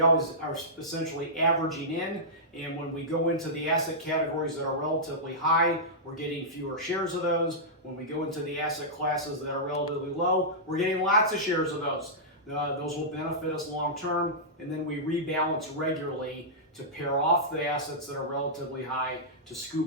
always are essentially averaging in, and when we go into the asset categories that are relatively high, we're getting fewer shares of those. When we go into the asset classes that are relatively low, we're getting lots of shares of those. Those will benefit us long term, and then we rebalance regularly to pair off the assets that are relatively high to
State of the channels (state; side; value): normal; both; correlation -0.14